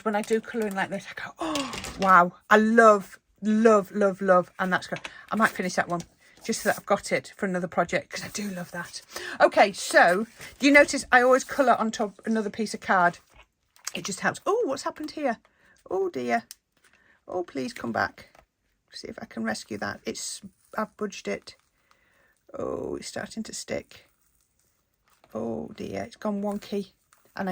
when I do colouring like this, I go, oh, wow. I love, love, love, love. And that's good. I might finish that one just so that I've got it for another project because I do love that. Okay, so do you notice I always colour on top another piece of card? It just helps. Oh, what's happened here? Oh, dear. Oh, please come back. See if I can rescue that. I've budged it. Oh, it's starting to stick. Oh, dear. It's gone wonky. And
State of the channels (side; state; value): both; identical; correlation 1.00